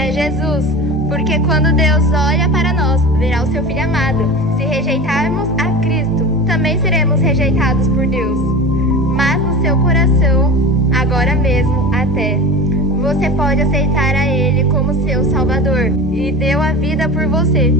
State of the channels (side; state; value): both; normal; correlation 0.31